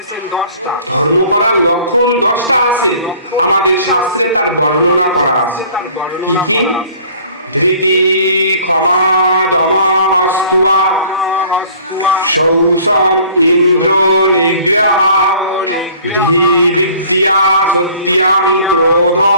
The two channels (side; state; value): both; inverted; correlation -0.52